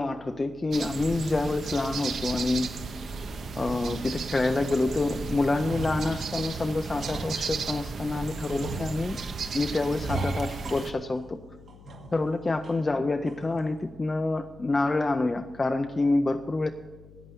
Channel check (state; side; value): noise; left; hum, 22 dB below the sound